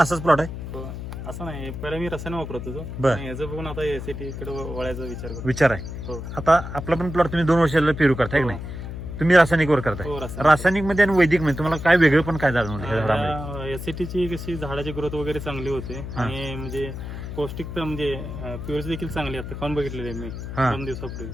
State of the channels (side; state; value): left; noise; hum, 8 dB below the sound